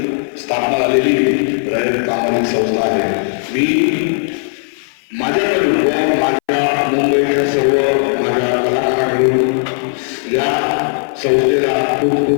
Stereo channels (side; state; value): right; silent; 63 dB below the other